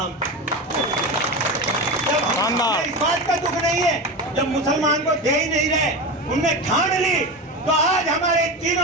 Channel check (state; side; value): normal; both; correlation 0.23